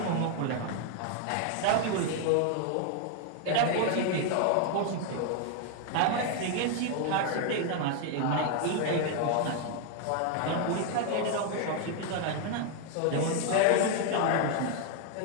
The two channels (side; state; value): both; different; correlation 0.00